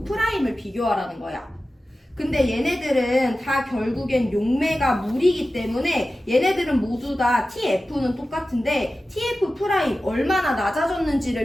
비교하라는 거야. 근데 얘네들은 다 결국엔 용매가 물이기 때문에 얘네들은 모두 다 TF는 똑같은데 TF' 얼마나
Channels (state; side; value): normal; both; correlation 0.94